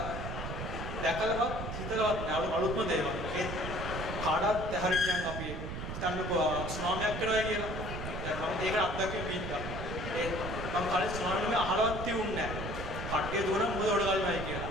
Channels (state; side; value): noise; right; rumble, 6 dB below the sound